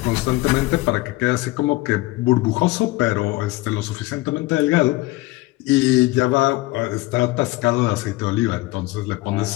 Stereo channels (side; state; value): right; quieter; 20.0 dB